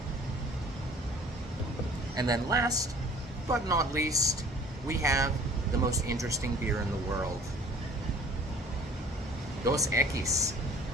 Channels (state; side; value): normal; both; correlation 0.50